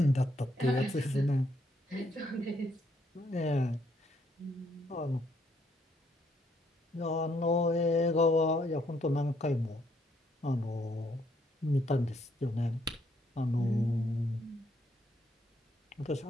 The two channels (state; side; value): normal; both; correlation 0.71